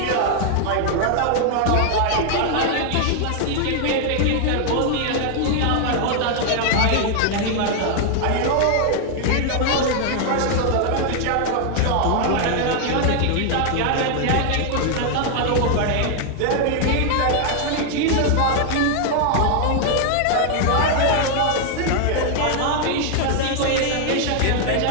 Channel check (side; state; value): both; different; correlation 0.00